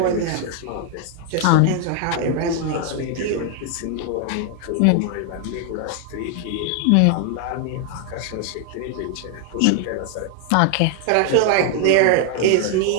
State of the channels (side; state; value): both; different; correlation 0.00